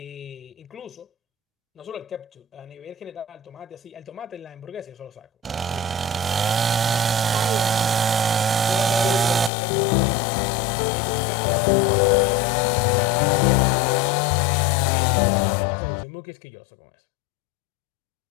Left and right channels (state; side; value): drops out; right; at 9.5 s